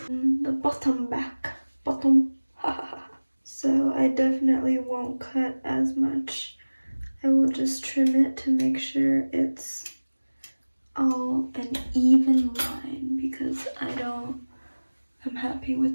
The bottom back. Bottom. So I definitely won't cut as much. I will just trim it to make sure it's all an even line because I'm happy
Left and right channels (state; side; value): inverted; both; correlation -1.00